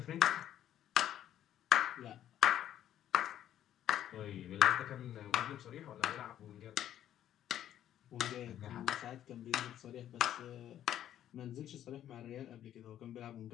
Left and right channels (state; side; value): quieter; right; 11.3 dB